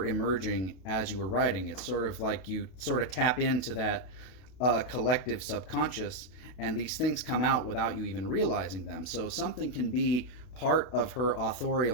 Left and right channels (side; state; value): right; late; 32 ms